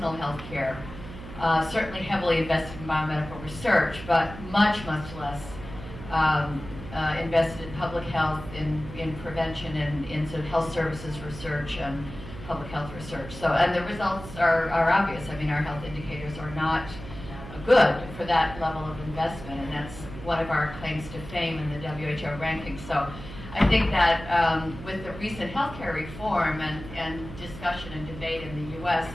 health care, certainly heavily invested in biomedical research, but much less invested in public health, in prevention, and in sort of health services research and public health research. So, and the results are obvious. I mean, our health indicators are not good for that level of investment, and that's one of our claims to fame in the WHO rankings. So I think that with the recent healthcare reform and discussion and debate in the U.S.,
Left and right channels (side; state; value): right; noise; hum, 13 dB below the sound